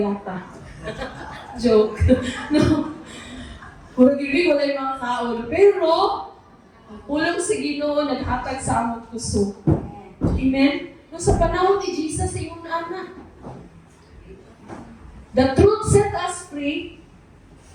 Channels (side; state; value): both; identical; correlation 1.00